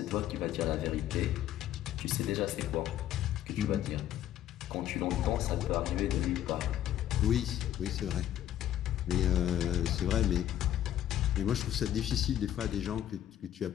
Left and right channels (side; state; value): right; quieter; 11.8 dB